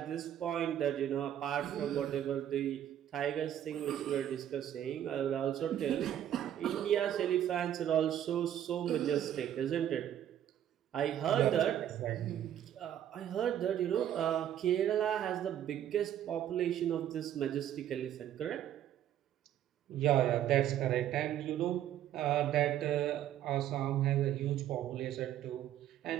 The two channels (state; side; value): quieter; left; 10.9 dB